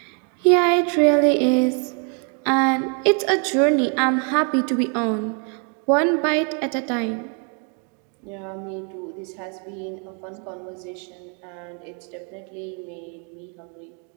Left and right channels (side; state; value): left; quieter; 39.1 dB